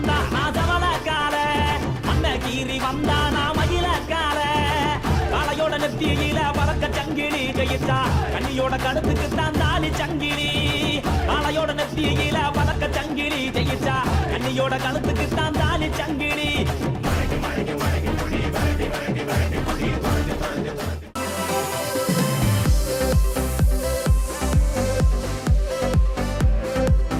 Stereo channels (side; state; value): both; identical; correlation 1.00